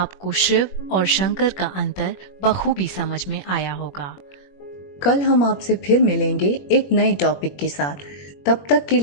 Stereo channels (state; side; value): late; right; 21 ms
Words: शिव और शंकर का अंतर बखूबी समझ में आया होगा। कल हम आपसे फिर मिलेंगे एक नए टॉपिक के साथ। तब तक के